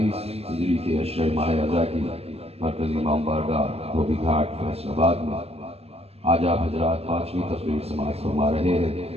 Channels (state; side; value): late; left; 0.29 ms